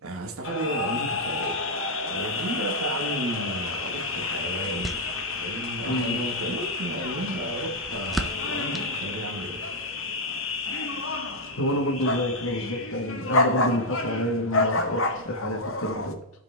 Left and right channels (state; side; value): normal; both; correlation -0.01